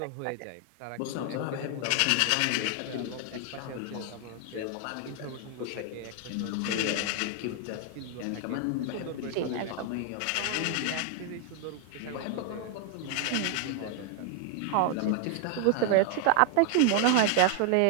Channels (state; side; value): different; both; correlation 0.00